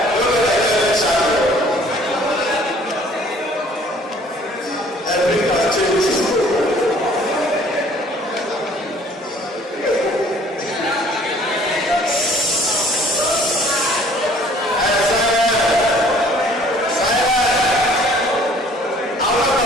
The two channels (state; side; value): normal; both; correlation 0.56